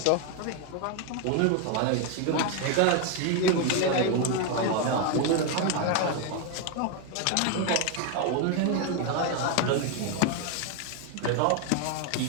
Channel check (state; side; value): different; both; correlation 0.01